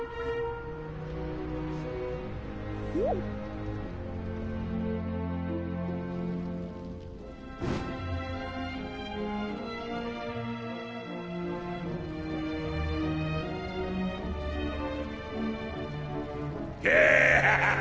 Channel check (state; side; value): identical; both; correlation 1.00